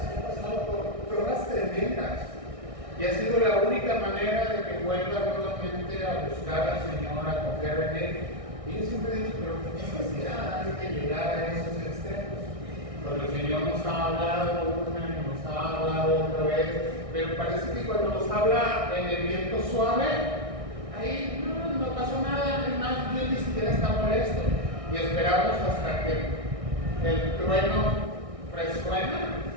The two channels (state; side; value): late; left; 1.6 ms